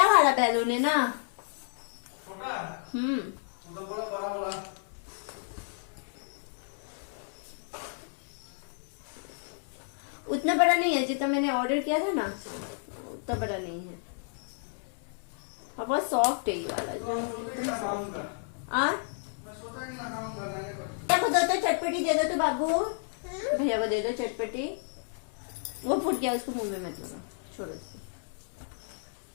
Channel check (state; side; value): silent; right; digital silence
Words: वाला बैलून है ना? छोटा? वो तो बड़ा वाला। उतना बड़ा नहीं है जितना मैंने ऑर्डर किया था ना, उतना बड़ा नहीं है। और बहुत सॉफ्ट है ये वाला। देखो दो तो चटपटी दे दो तो बाबू, भैया को दे दो चटपटी। वो फूट गया, उसको मुंह में मत लगा, छोड़ो दो।